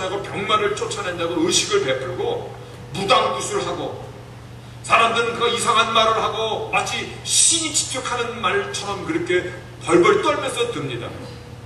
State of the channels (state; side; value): identical; both; correlation 1.00